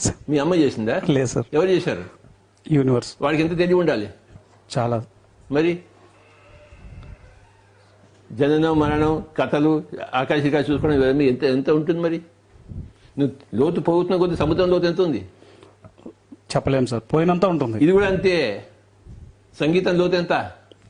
సార్. మీ అమ్మ చేసిందా? లేదు సార్. ఎవరు చేశారు? యూనివర్స్. వాడికి ఎంత తెలివి ఉండాలి? చాలా. మరి జననం మరణం కథలు ఆకాశికా చూసుకోవడం ఇవన్నీ ఎంత ఉంటుంది మరి? నువ్వు లోతు పోతున్న కొద్ది సముద్రం లోతు ఎంత ఉంది చెప్పలేం సార్. పోయినంత ఉంటుంది. ఇది కూడా అంతే. సంగీతం లోతు ఎంత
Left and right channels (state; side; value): identical; both; correlation 1.00